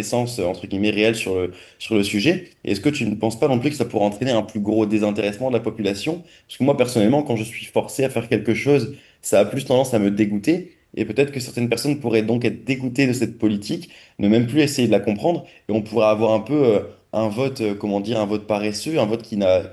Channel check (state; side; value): identical; both; correlation 1.00